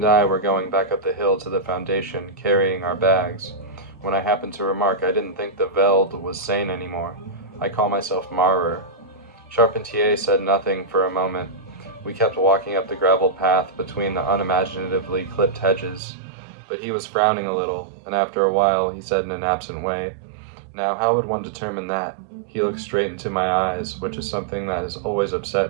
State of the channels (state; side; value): drops out; left; at 16.0 s